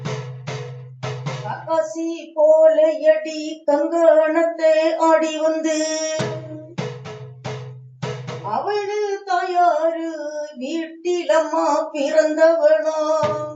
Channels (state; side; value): identical; both; correlation 1.00